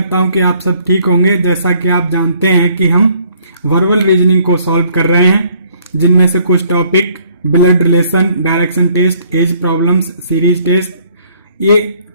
हूं कि आप सब ठीक होंगे। जैसा कि आप जानते हैं कि हम वर्बल रीजनिंग को सॉल्व कर रहे हैं, जिनमें से कुछ topic blood relation, direction test, age problems, series test, ये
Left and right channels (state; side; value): inverted; both; correlation -0.63